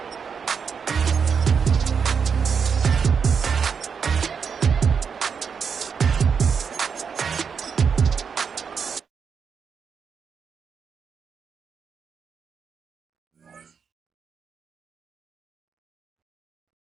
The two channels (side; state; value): left; quieter; 6.4 dB